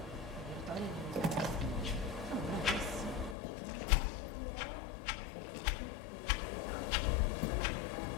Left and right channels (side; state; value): right; drops out; at 3.4 s